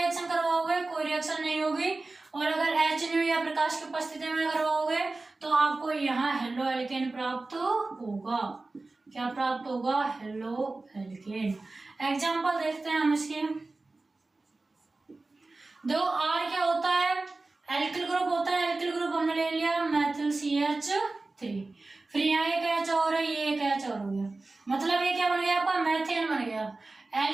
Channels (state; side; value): quieter; left; 3.3 dB